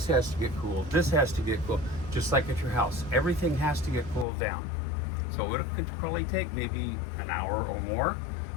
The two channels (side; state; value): right; drops out; at 4.2 s